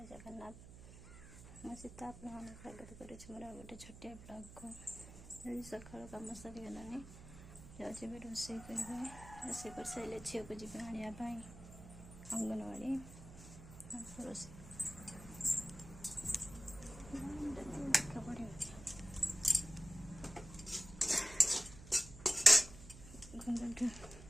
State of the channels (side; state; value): right; noise; hum, 15 dB below the sound